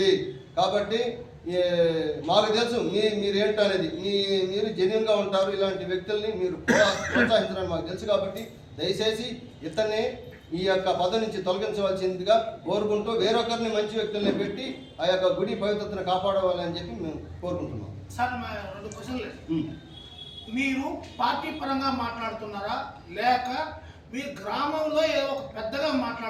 కాబట్టి మాకు తెలుసు మీరు ఏంటో అనేది, మీరు జెన్యున్గా ఉంటారు. ఇలాంటి వ్యక్తుల్ని మీరు ప్రోత్సహించడానికి మాకు తెలుసు. కాబట్టి దయచేసి ఇతన్ని ఈ యొక్క పదవి నుంచి తొలగించవలసిందిగా కోరుకుంటూ వేరొకరిని మంచి వ్యక్తుల్ని పెట్టి ఆ యొక్క గుడి పవిత్రతను కాపాడవాలని చెప్పి మేము కోరుకుంటున్నాం. సార్, మా 2 క్వశ్చన్లు. మీరు పార్టీ పరంగా మాట్లాడుతున్నారా, లేక మీరు గ్రామంలో ఏదో ఒక పెద్దగా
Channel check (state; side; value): identical; both; correlation 1.00